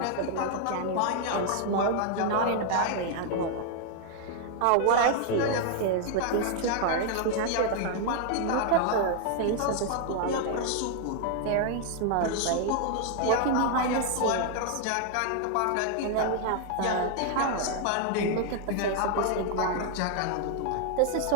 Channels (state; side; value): different; both; correlation 0.00